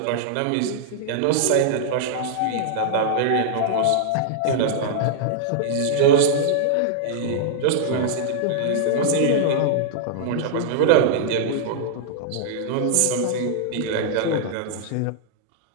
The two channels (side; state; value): both; different; correlation -0.01